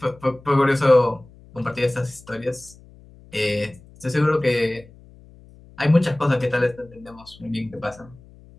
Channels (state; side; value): noise; left; hum, 24 dB below the sound